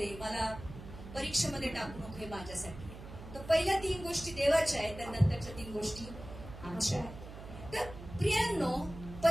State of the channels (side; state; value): right; noise; hum, 13 dB below the sound